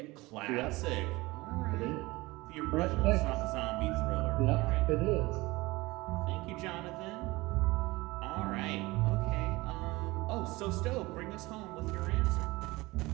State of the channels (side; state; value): left; quieter; 21.3 dB